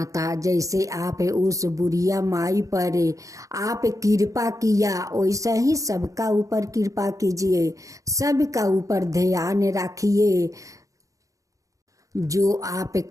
जैसे आप उस बुढ़िया माई पर आप कृपा किया, वैसा ही सबका ऊपर कृपा कीजिए, सबका ऊपर ध्यान रखिए। जो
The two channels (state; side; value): late; left; 0.16 ms